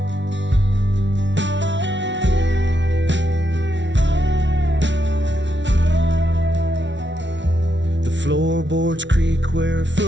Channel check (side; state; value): left; late; 0.53 ms